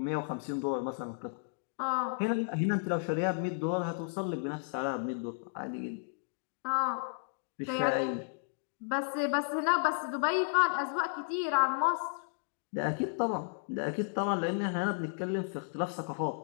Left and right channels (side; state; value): right; silent; digital silence